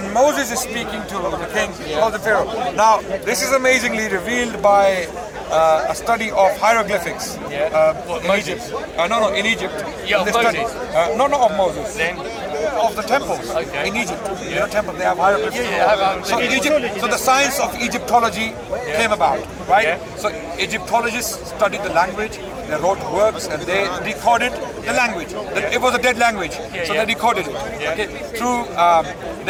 Moses is speaking to the king, he calls him Pharaoh. Now, this is amazingly revealed by a study of hieroglyphics in Egypt. In Egypt. Yeah, of Moses. Not of Moses. Then? Of the temples in Egypt. Temples, they have hieroglyphics. So in Egypt, so the science of Egyptology came about, right? So Egyptologists studied the language, they wrote works, and they decoded the language. It was a dead language, so they decoded it. Okay, through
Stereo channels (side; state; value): both; identical; correlation 1.00